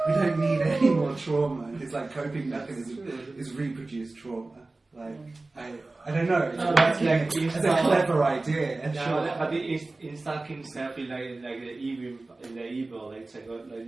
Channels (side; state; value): left; quieter; 3.2 dB